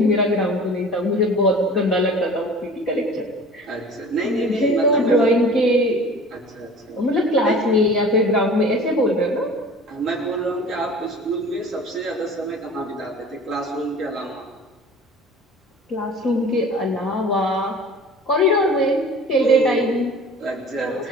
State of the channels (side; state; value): both; normal; correlation 0.42